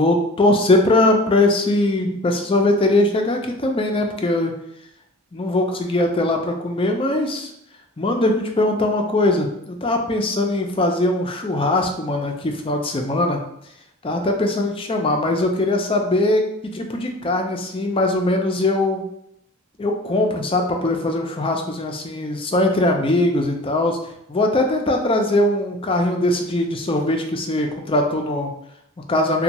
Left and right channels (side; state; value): both; normal; correlation 0.41